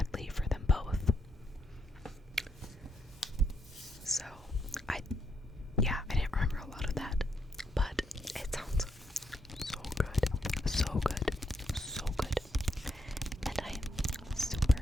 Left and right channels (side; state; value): both; normal; correlation 0.78